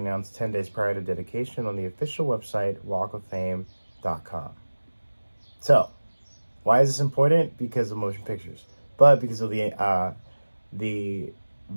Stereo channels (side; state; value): both; inverted; correlation -1.00